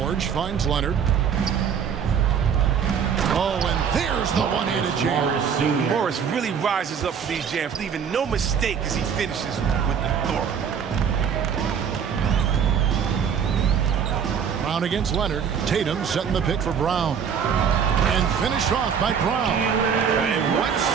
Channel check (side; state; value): left; quieter; 7.3 dB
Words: finds Leonard. Oh, and there's the one-handed jam. Morris really rises up for these jams, leaving no mistake as he finishes with authority. Brown against Leonard. Tatum setting the pick for Brown. And finished off by Brown. And one